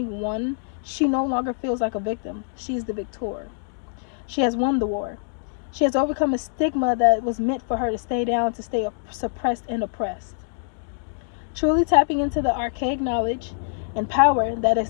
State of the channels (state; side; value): silent; right; digital silence